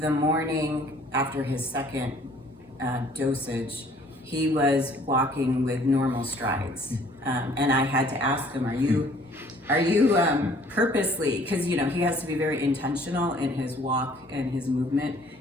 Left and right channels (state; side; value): normal; both; correlation 0.57